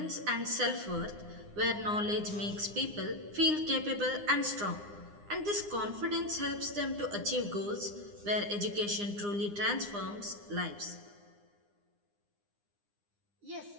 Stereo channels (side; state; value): left; late; 9.8 ms